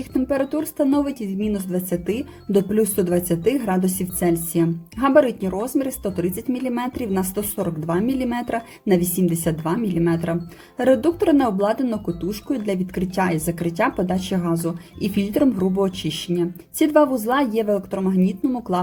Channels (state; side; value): identical; both; correlation 1.00